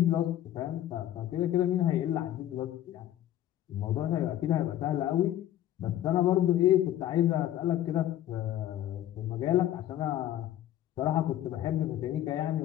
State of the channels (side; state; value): right; quieter; 12.6 dB